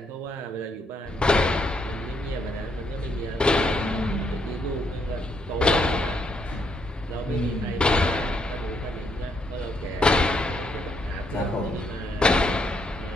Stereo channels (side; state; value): both; normal; correlation 0.74